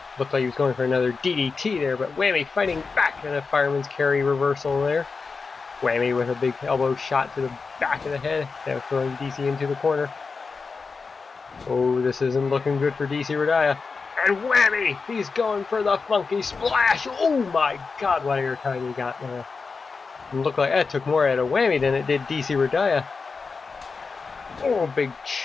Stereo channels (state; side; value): quieter; right; 4.7 dB